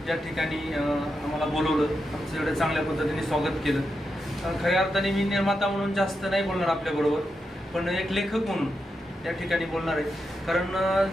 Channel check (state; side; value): normal; both; correlation 0.86